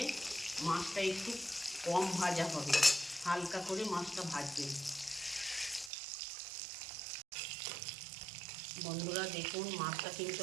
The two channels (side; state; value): left; drops out; at 5.9 s